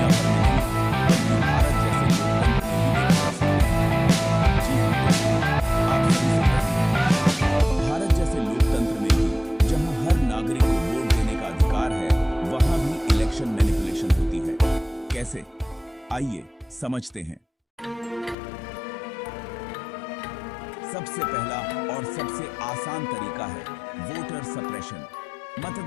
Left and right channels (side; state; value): right; drops out; at 18.4 s